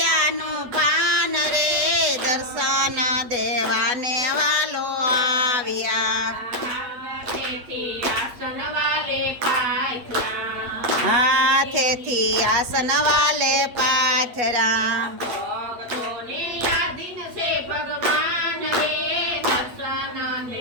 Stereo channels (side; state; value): left; late; 8.2 ms